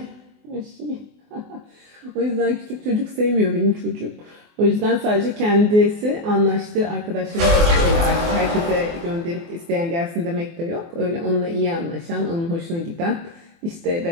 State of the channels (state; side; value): late; left; 24 ms